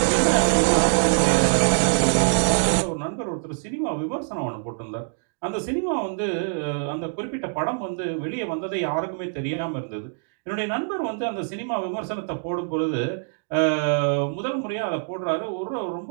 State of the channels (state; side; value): silent; left; digital silence